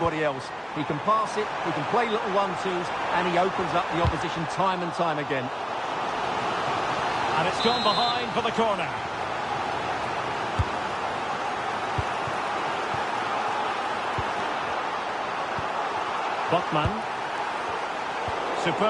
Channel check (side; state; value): both; identical; correlation 1.00